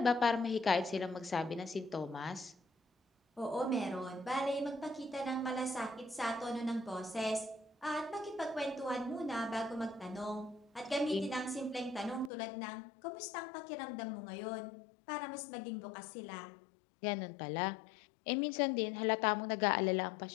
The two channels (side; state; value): right; drops out; at 12.3 s